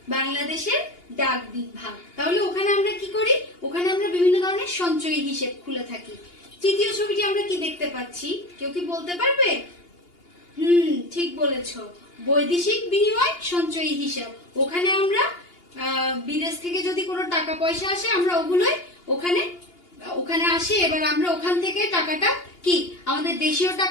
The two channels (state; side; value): late; right; 2.8 ms